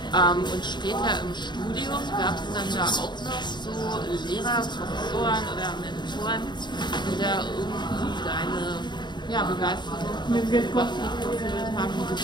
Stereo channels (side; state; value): right; late; 0.22 ms